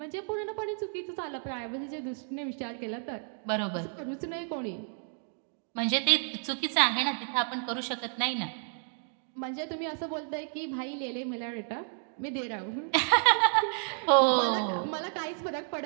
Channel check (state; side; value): silent; left; 57 dB below the other